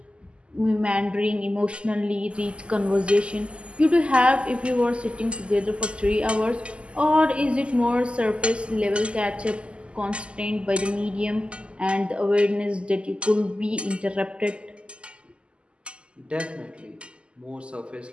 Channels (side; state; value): left; late; 0.052 ms